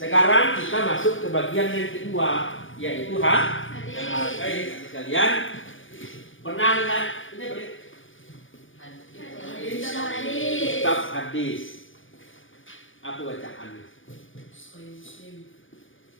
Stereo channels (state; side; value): late; right; 0.57 ms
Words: kita masuk ke bagian yang kedua, yaitu Hadis. Baik, sekalian. Pernah lihat ini apa? Kitab hadis. Apa bacaannya?